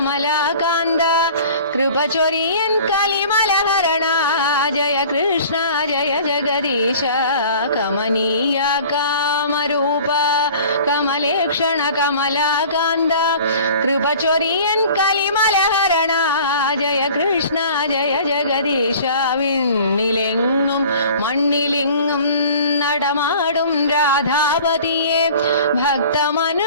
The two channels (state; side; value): inverted; both; correlation -0.46